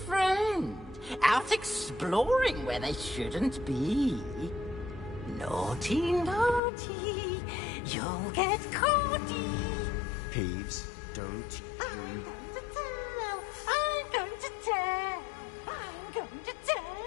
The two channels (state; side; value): drops out; right; at 6.6 s